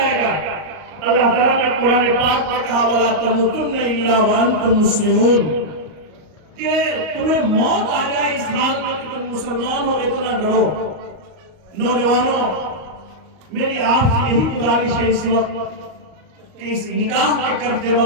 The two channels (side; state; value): left; late; 38 ms